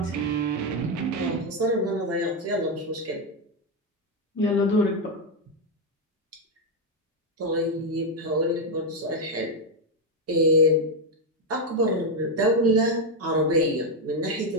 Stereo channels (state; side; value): normal; both; correlation 0.04